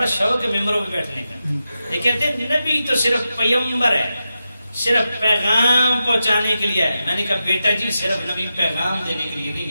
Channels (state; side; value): inverted; both; correlation -0.89